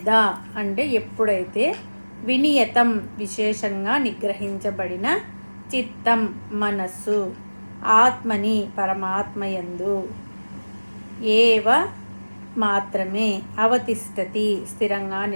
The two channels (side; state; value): both; inverted; correlation -1.00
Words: అంటే ఎప్పుడైతే, వినియతం విశేషంగా నిగ్రహించబడిన, చిత్తం మనస్సు, ఆత్మని పరమాత్మయందు, ఏవ మాత్రమే, అవతిష్టతి స్థిరంగా